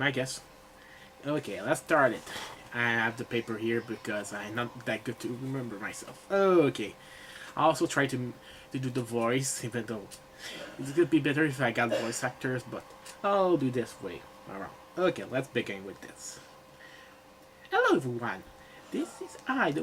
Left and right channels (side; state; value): both; identical; correlation 1.00